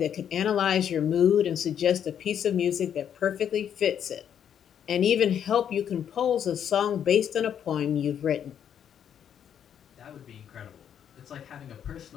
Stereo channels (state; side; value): quieter; right; 8.9 dB